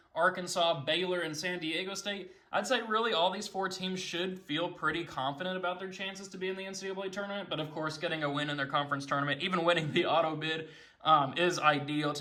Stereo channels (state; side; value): identical; both; correlation 1.00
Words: Arkansas, Baylor, and San Diego State. I'd say really all these 4 teams should feel pretty confident about their chances to be in the NCAA tournament, but of course getting a win in their conference tournament, even winning the auto bid, is ideal